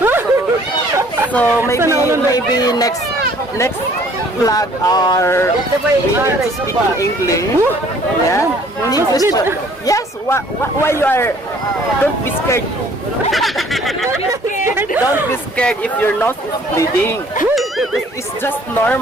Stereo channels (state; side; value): normal; both; correlation 0.57